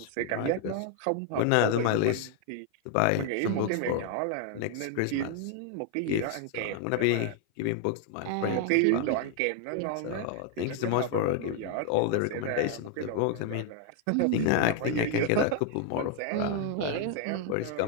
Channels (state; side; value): different; both; correlation 0.00